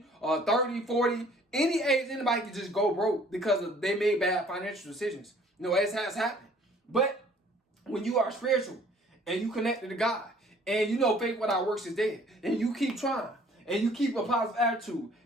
30, 40. Any age, anybody can just go broke because they made bad financial decisions. It has happened. But when you are spiritual and you connected to God, and faith without works is dead, and you keep trying, and you keep a positive attitude,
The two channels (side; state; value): both; normal; correlation 0.56